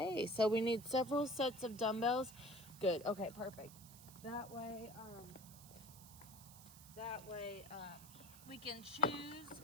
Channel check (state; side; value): noise; right; hiss, 18 dB below the sound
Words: so we need several sets of dumbbells. Good. Okay, perfect. That way, we can choose